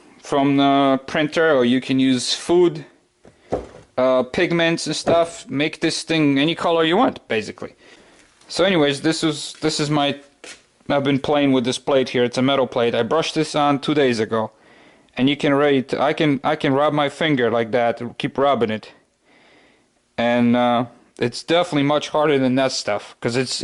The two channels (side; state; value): both; identical; correlation 1.00